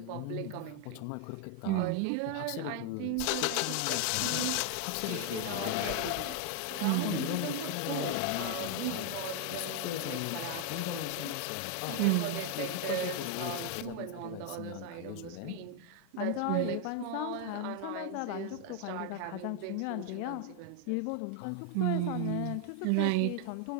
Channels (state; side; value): different; both; correlation 0.01